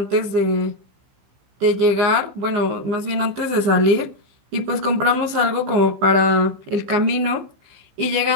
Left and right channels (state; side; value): late; left; 15 ms